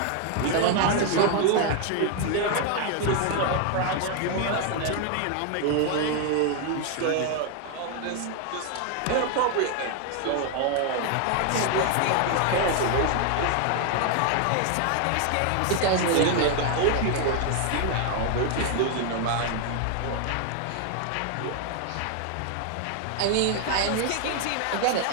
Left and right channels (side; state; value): both; different; correlation 0.00